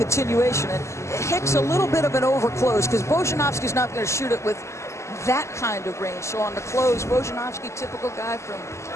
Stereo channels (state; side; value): late; right; 0.13 ms